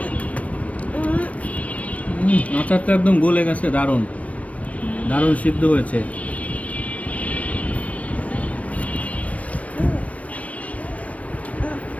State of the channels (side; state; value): right; late; 0.066 ms